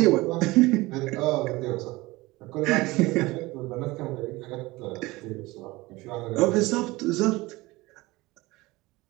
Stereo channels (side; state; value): left; quieter; 20.9 dB